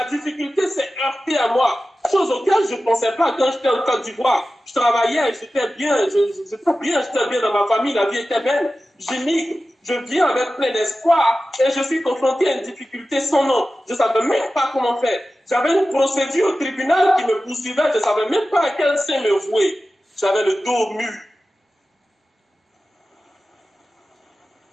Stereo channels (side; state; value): both; normal; correlation 0.94